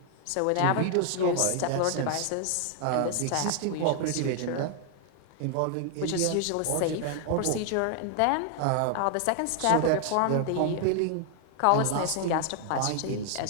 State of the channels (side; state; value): both; different; correlation 0.00